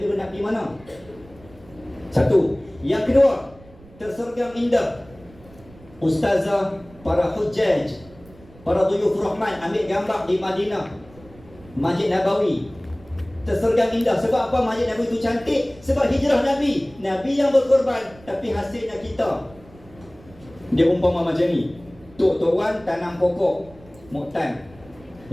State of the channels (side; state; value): right; noise; rumble, 23 dB below the sound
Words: Ibrahim nak pergi mana? Satu. Yang kedua, tersergam indah ustazah, para hujjaj, para duyuf rahman ambil gambar di Madinah, Masjid Nabawi. Tersergam indah. Sebab apa Masjid Nabawi itu cantik? Sebab hijrah Nabi. Nabi yang berkorban, tapi hasilnya kita. Dia umpama macam ni, Tok Wan tanam pokok moktan.